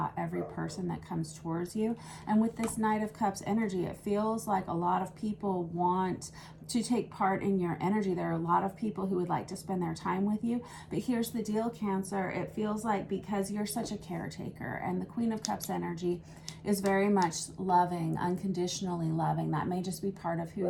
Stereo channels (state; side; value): identical; both; correlation 1.00